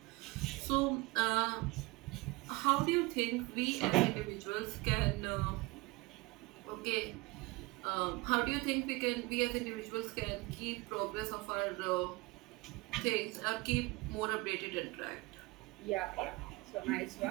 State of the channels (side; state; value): left; quieter; 23.4 dB